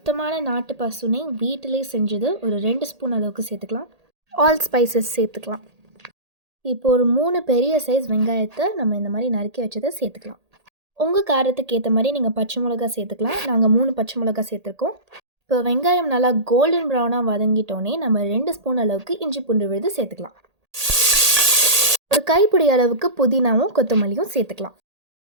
நாட்டு பசுனை வீட்டிலே செஞ்சது ஒரு 2 ஸ்பூன் அளவுக்கு சேர்த்துக்கலாம். ஆல் ஸ்பைசஸ் சேர்த்துக்கலாம். இப்போ ஒரு 3 பெரிய சைஸ் வெங்காயத்தை நம்ம இந்த மாதிரி நறுக்கி வச்சதை சேர்த்துக்கலாம். உங்கள் காரத்துக்கு ஏற்ற மாதிரி நீங்கள் பச்சை மிளகா சேர்த்துக்கலாம். நாங்கள் 3 பச்சை மிளகா சேர்த்துருக்கோம். இப்போ வெங்காயம் நல்லா கோல்டன் ப்ரௌனாக வதங்கிட்டோன்னே நம்ம 2 ஸ்பூன் அளவுக்கு இஞ்சி பூண்டு விழுது சேர்த்துக்கலாம். ஒரு கைப்பிடி அளவுக்கு புதினாவும் கொத்தமல்லியும் சேர்த்துக்கலாம்.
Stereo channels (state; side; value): late; left; 1.8 ms